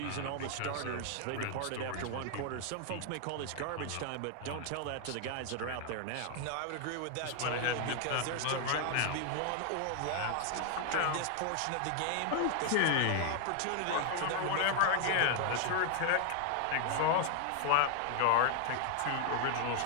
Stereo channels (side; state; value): both; different; correlation 0.00